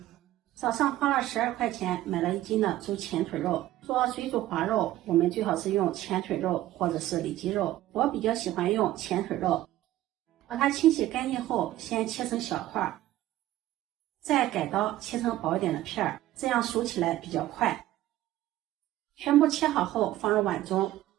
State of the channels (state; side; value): quieter; left; 14.7 dB